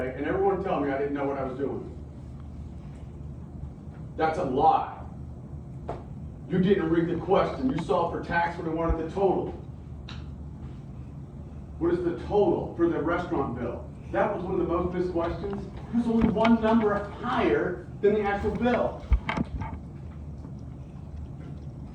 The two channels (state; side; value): identical; both; correlation 1.00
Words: and everyone tell me I didn't know what I was doing. That's a lie. You didn't read the question. You saw for tax when they wanted the total. What is the total for the restaurant bill? That was one of the most missed questions. There's only one number higher than the actual bill.